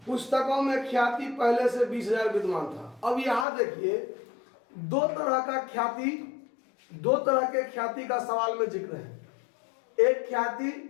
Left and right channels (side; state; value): right; drops out; at 3.5 s